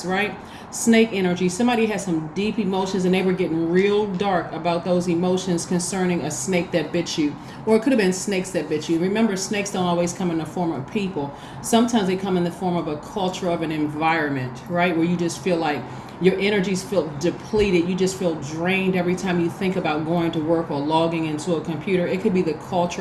right? Snake energy. Somebody has some deep emotions and they were getting real dark about those emotions concerning a snake that bit you. Or it could have been snakes that bit you. Remember, snakes don't always come in the form of people. Sometimes they come in the form of a culture, of an environment, right? Where you just feel like your energies feel depleted. You just feel drained every time you think about going to work or logging into a computer. It could be the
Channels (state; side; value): identical; both; correlation 1.00